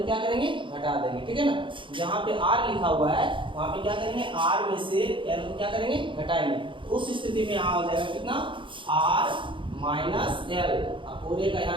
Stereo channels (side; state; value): left; late; 0.24 ms